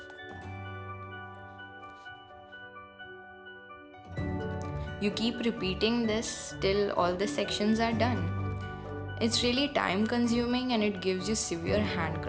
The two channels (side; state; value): both; identical; correlation 1.00